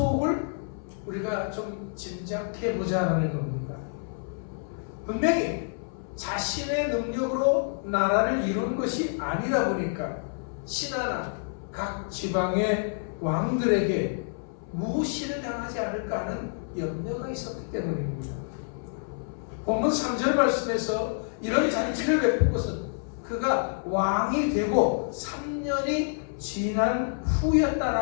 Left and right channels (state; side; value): silent; right; 59 dB below the other